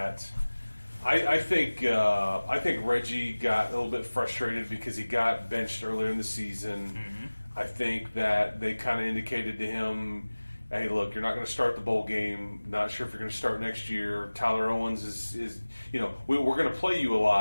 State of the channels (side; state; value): both; inverted; correlation -1.00